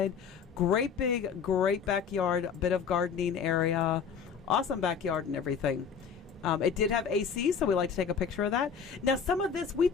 Great backyard, a bit of gardening area. Awesome backyard and everything. It did have AC, so we like to take a picture of that. Now, some of this, we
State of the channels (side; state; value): right; quieter; 6.6 dB